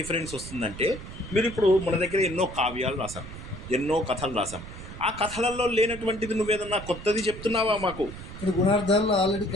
వస్తుందంటే, మీరు ఇప్పుడు మన దగ్గర ఎన్నో కావ్యాలు రాసాం, ఎన్నో కథలు రాసాం. ఆ కథలలో లేనటువంటిది నువ్వేదన్నా కొత్తది చెప్తున్నావా మాకు? గుణార్థాల్లో ఆల్రెడీ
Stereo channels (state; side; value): noise; right; rumble, 12 dB below the sound